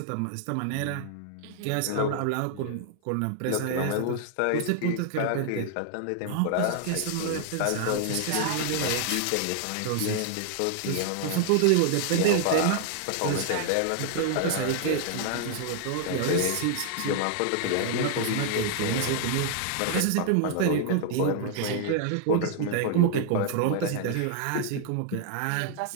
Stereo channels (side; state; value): both; different; correlation 0.00